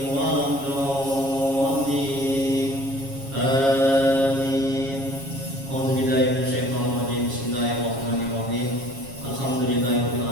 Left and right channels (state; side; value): late; left; 7.3 ms